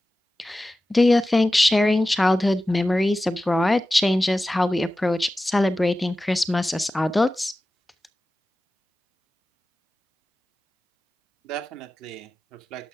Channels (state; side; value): normal; both; correlation 0.95